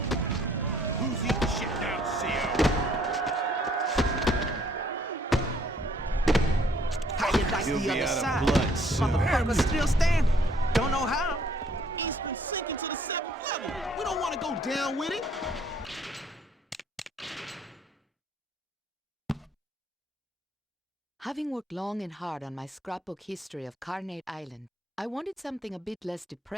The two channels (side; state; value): both; normal; correlation 0.62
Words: Who's eating shit down, CO? How you like He'll the be other out of side? blood soon. Motherfucker's still standing. Don't know how. Eastern sinking to the 7th level. We don't want to go down with it. Having worked long and hard on my scrapbook history of Carnate Island, I wanted something a bit less